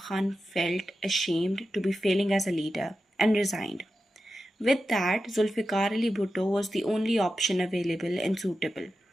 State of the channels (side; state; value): both; normal; correlation 0.91